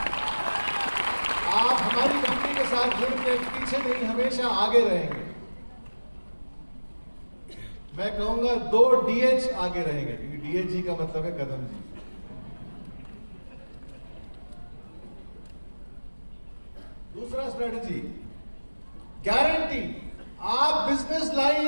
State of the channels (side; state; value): both; inverted; correlation -1.00